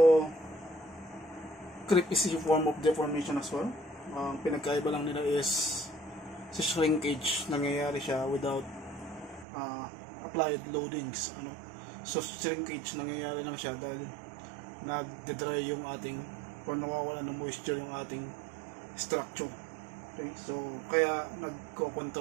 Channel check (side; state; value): left; drops out; at 9.5 s